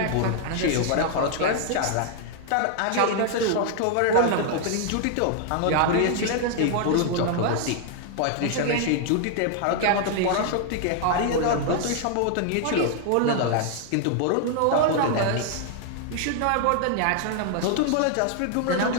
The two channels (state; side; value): different; both; correlation 0.00